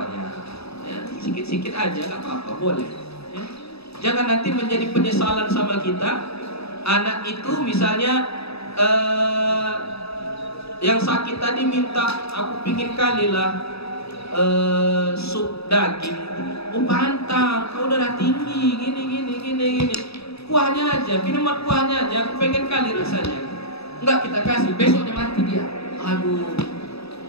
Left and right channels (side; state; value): right; late; 0.78 ms